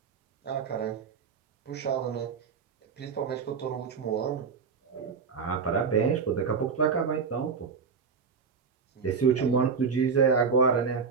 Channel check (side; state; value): left; quieter; 5.7 dB